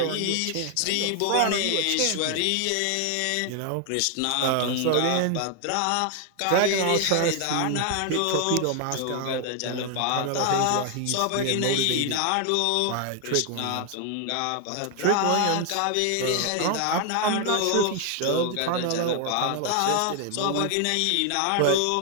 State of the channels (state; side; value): different; both; correlation 0.01